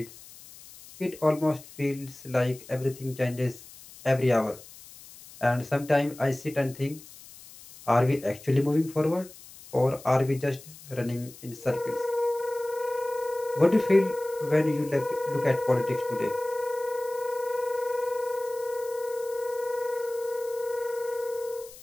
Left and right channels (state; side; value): noise; left; hiss, 19 dB below the sound